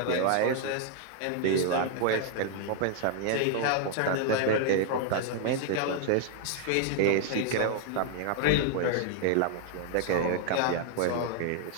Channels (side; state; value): both; different; correlation 0.00